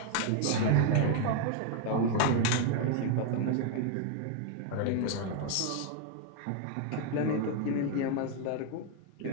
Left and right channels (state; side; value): different; both; correlation 0.00